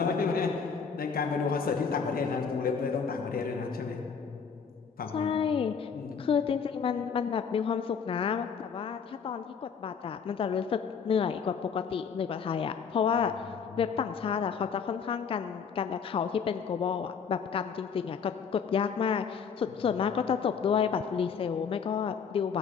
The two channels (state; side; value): quieter; right; 6.3 dB